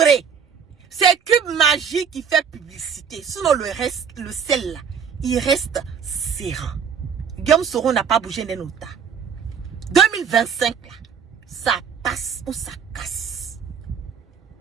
c'est Q Magie qui fait publicité, sinon le sel là, il reste serein. Guillaume Soro n'a pas bougé d'un nota. 2025 là, ça passe ou ça casse.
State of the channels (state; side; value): quieter; left; 7.0 dB